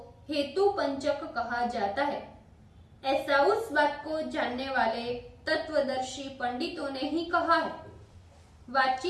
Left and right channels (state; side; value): identical; both; correlation 1.00